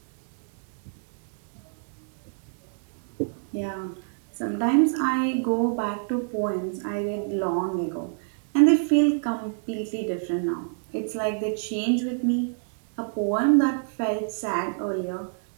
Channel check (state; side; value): silent; left; digital silence